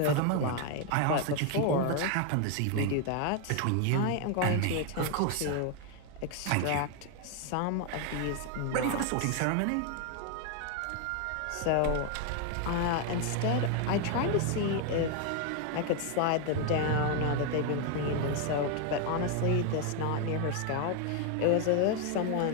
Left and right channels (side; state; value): both; different; correlation 0.01